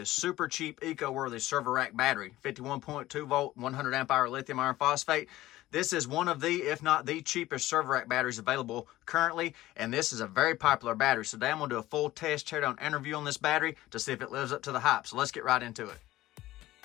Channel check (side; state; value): right; quieter; 16.1 dB